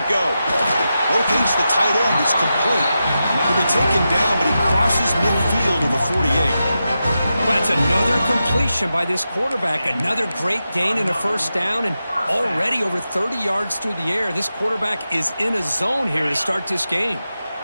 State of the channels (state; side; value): inverted; both; correlation -0.90